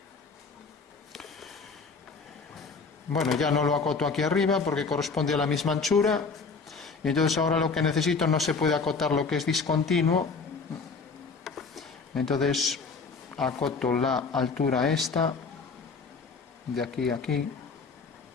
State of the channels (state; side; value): quieter; right; 4.6 dB